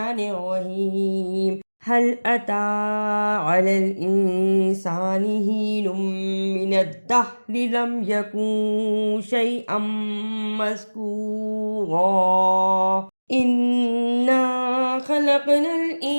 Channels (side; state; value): both; inverted; correlation -1.00